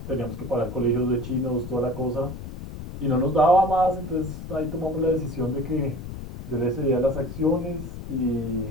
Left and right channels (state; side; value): noise; left; rumble, 10 dB below the sound